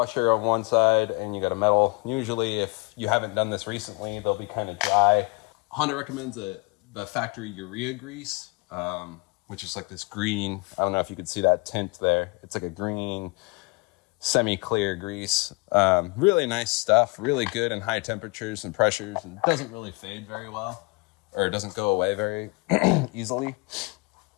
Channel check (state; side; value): quieter; right; 28.0 dB